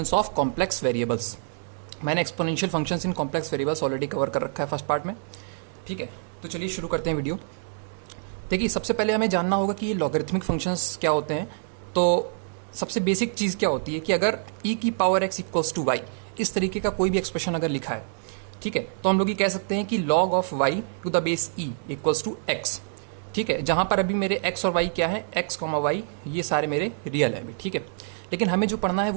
of complex variables. मैंने exponential functions in complex variables already cover कर रखा है फर्स्ट पार्ट में। ठीक है, तो चलिए शुरू करते हैं वीडियो। देखिए, सबसे पहले हमें जानना होगा कि ये लॉगरिथमिक फंक्शंस क्या होते हैं। तो सबसे बेसिक चीज़ क्या होती है कि अगर e की power x equals to y इस तरीके का कोई भी एक्सप्रेशन अगर लिखा है, ठीक है, तो हम लोग ये कह सकते हैं कि log of y to the base e equals to x। ठीक है, जहाँ पर अभी मेरे x और y क्या है, x, y ये सारे मेरे रियल है। ठीक है, लेकिन हमें जो पढ़ना है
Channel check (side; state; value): left; silent; digital silence